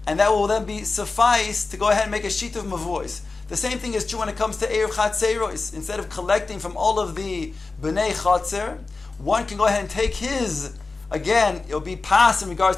and that will then be suffice to go ahead and make a sheet of mavuos. The same thing is true when it comes to erev chatzeiros. Instead of collecting from all of the bnei chatzer, one can go ahead and take his. Again, it'll be pas in regards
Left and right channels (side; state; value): right; quieter; 3.8 dB